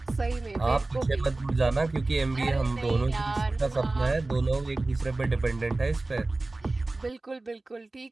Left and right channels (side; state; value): left; quieter; 3.1 dB